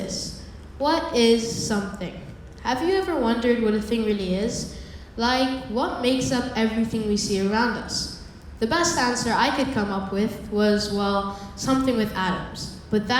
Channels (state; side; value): identical; both; correlation 1.00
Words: what is something? Have you ever wondered what a thing really is? Like, what makes up everything we see around us? The best answer I could come up with was, well, something with atoms. But